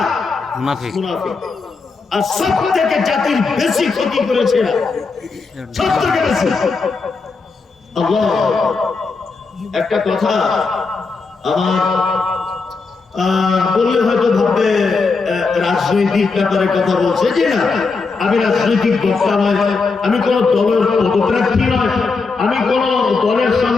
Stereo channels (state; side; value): quieter; right; 4.4 dB